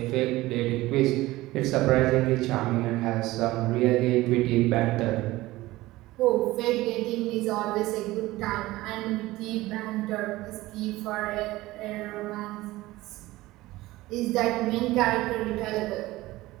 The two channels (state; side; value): quieter; left; 18.2 dB